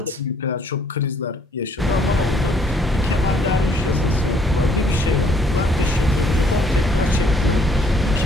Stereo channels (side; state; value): both; normal; correlation 0.64